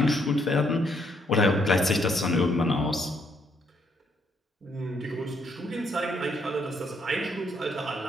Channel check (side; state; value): both; normal; correlation 0.72